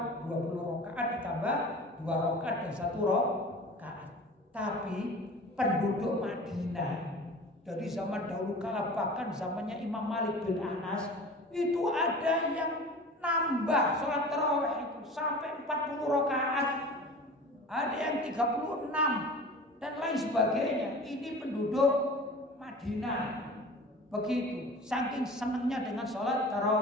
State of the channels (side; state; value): both; normal; correlation 0.39